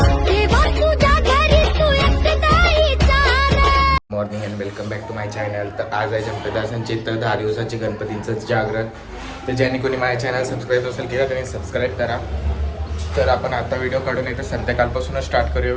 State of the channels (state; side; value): identical; both; correlation 1.00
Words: देवा तुझ्या घरी तू एकटाईचा ना. Morning and welcome back to my channel. तर आज आहे चंपदासांची तर 10 दिवसांची गणपतींचं जागरण. तर ज्यांनी कोणी माझ्या चॅनल सबस्क्राईब असेल केला त्यांनी सबस्क्राईब करा. तर आपण आता व्हिडिओ काढून येतो संध्याकाळपासूनच स्टार्ट करूया